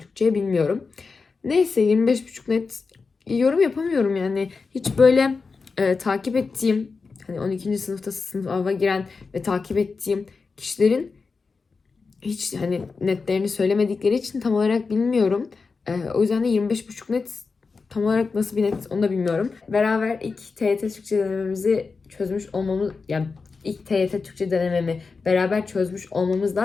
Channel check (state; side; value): quieter; right; 4.6 dB